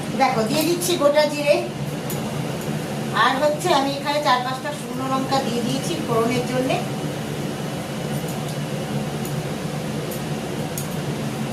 দেখো দিয়ে দিচ্ছি গোটা জিরে, আর হচ্ছে আমি এখানে 4-5টা শুকনো লঙ্কা দিয়ে দিয়েছি ফোড়নের জন্য।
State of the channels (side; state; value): both; identical; correlation 1.00